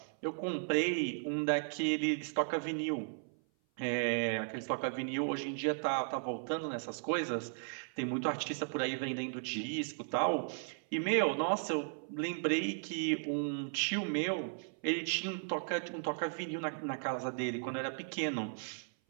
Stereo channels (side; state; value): left; silent; 54 dB below the other